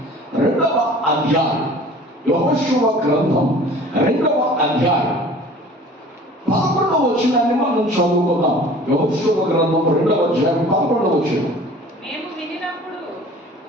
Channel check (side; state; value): both; normal; correlation 0.46